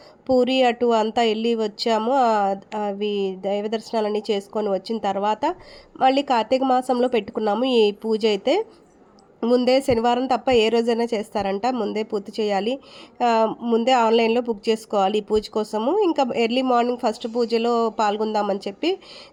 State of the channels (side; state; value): both; identical; correlation 1.00